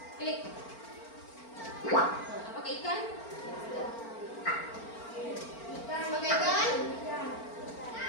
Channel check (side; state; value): right; late; 4.4 ms